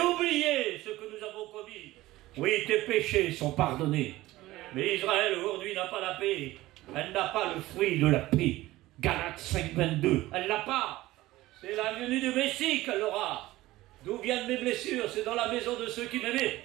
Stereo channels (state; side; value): quieter; left; 17.4 dB